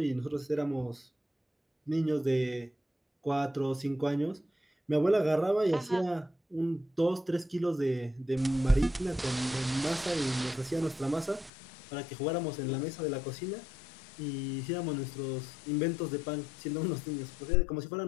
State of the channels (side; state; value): right; drops out; at 11.5 s